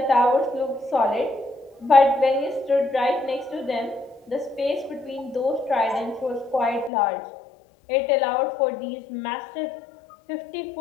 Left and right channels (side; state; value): right; drops out; at 6.9 s